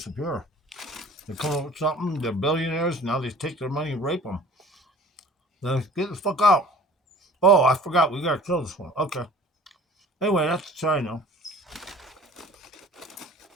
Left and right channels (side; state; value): both; normal; correlation 0.46